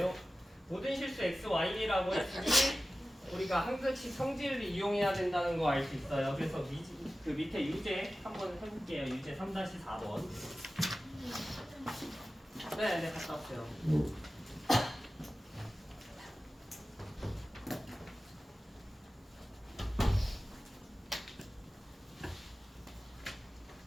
모든 실수 x, y라고 했으니 우리가 항등식 성질을 이용해야 된다는 거 알 수 있어요. 그래서 그 밑에 유제 한번 해볼게요. 유제 3-4번. 네, 갔다 왔어요.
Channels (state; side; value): normal; both; correlation 0.95